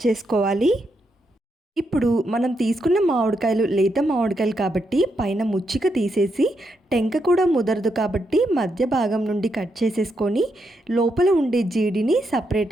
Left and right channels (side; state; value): both; normal; correlation 0.81